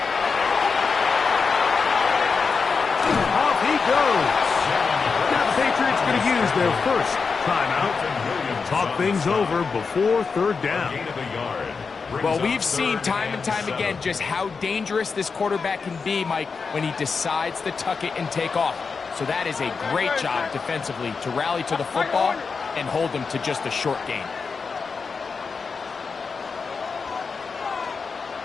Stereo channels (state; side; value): quieter; right; 5.1 dB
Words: Off he goes. Now the Patriots going to use their first timeout. Talk things over before 3rd down. Gain of a yard. Well, we've seen time and time again just how dangerous this quarterback can be, Mike, when he decides to tuck it and take off. So that is a great job defensively to rally to the football and hold him to just a short gain.